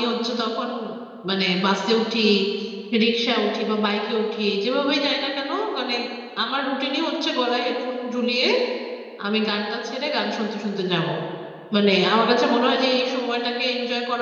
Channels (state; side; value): identical; both; correlation 1.00